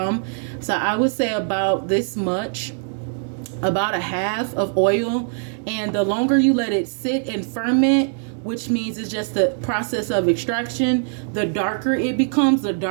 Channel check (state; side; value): silent; left; digital silence